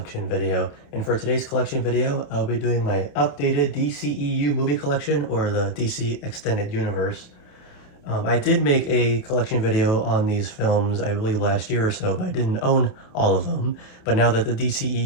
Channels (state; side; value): late; right; 28 ms